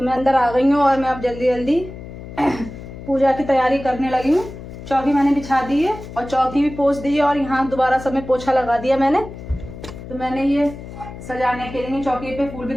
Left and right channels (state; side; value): noise; left; hum, 13 dB below the sound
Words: मैं अंदर आ गई हूँ और मैं अब जल्दी जल्दी पूजा की तैयारी करने लगी हूँ। चौकी मैंने बिछा दी है और चौकी भी पोंछ दी है और यहाँ दोबारा सब में पोछा लगा दिया मैंने। तो मैंने ये सजाने के लिए चौकी पे फूल भी